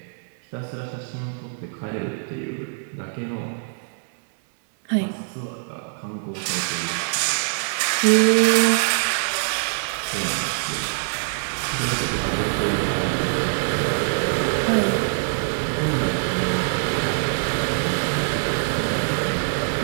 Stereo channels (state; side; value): silent; left; digital silence